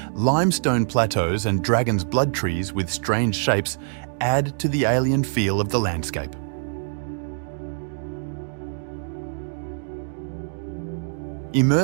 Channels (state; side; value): silent; left; digital silence